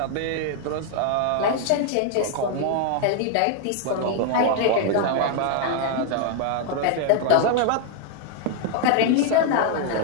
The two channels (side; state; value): both; different; correlation 0.00